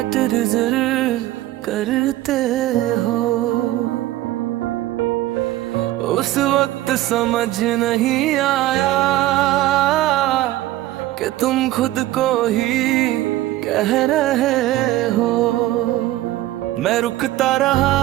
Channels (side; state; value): left; quieter; 15.7 dB